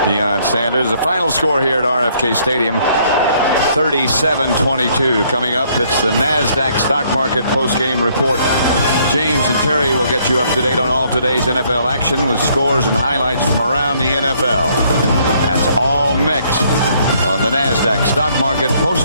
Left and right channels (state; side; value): inverted; both; correlation -0.66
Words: Deion Sanders. The final score here at RFK Stadium, 37-22. Coming up, it's the NASDAQ stock market post-game report. James and Terry will get you up to date on all today's NFL action with scores and highlights from around the NFL. That's all next on the NASDAQ stock market